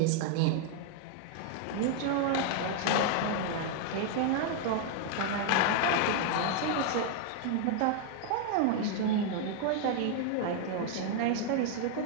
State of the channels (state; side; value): different; both; correlation 0.00